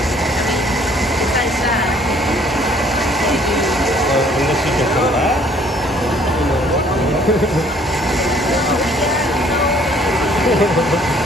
Besides that, they do. Unless you can come back.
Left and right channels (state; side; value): normal; both; correlation 0.59